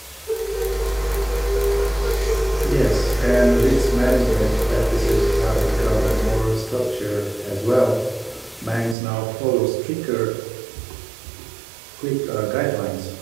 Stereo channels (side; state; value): left; drops out; at 9.0 s